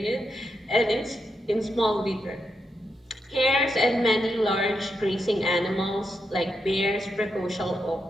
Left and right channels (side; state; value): both; normal; correlation 0.84